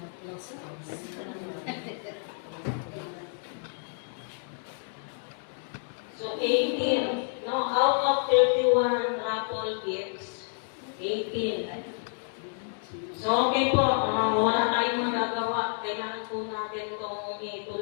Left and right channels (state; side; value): silent; right; 58 dB below the other